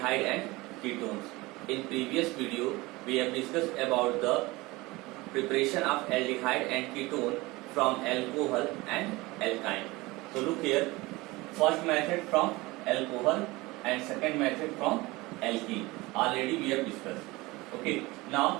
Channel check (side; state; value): left; quieter; 21.6 dB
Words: and ketones. In previous video, we have discussed about the preparation of aldehyde and ketone from alcohol and alkyne. So look here, first method from alcohol and second method from alkene. Already we have discussed. Okay,